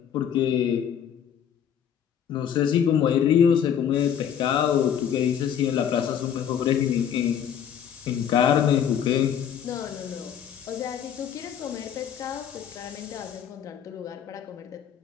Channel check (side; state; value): right; quieter; 8.8 dB